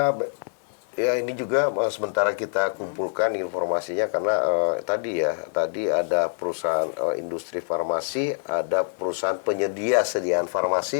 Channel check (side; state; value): right; silent; digital silence